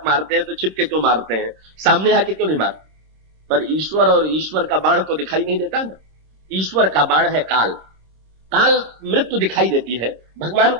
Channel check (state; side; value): late; left; 26 ms